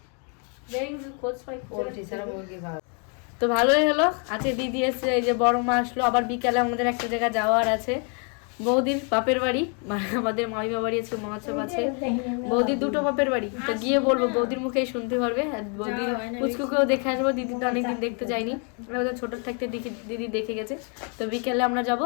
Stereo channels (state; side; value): quieter; right; 38.3 dB